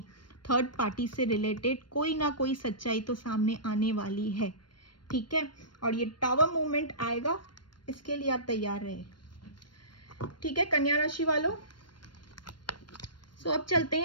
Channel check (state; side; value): late; right; 0.72 ms